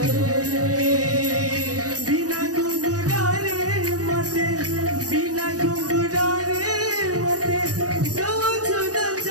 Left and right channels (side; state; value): left; late; 0.67 ms